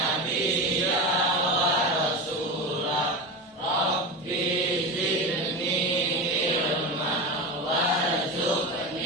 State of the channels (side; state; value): both; normal; correlation 0.22